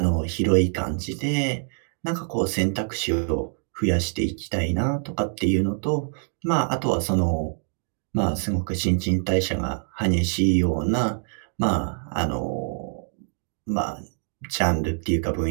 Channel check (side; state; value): left; silent; 62 dB below the other